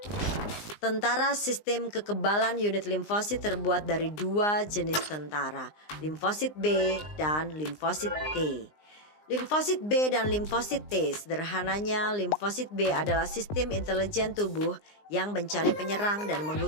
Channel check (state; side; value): late; right; 19 ms